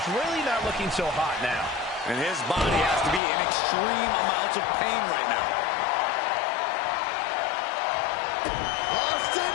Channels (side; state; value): right; drops out; at 3.2 s